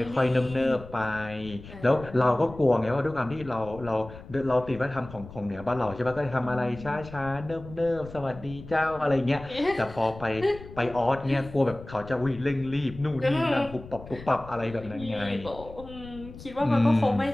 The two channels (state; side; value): noise; left; rumble, 16 dB below the sound